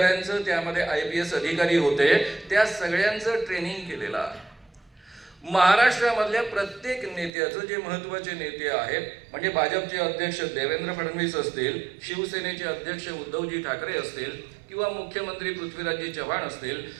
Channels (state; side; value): drops out; left; at 7.3 s